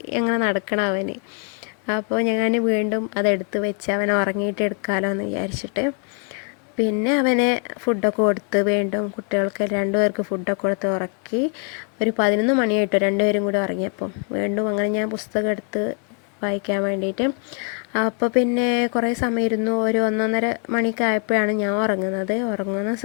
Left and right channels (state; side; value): quieter; right; 39.4 dB